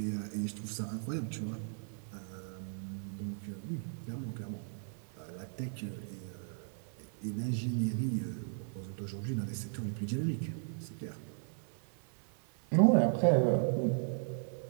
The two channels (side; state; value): left; silent; 53 dB below the other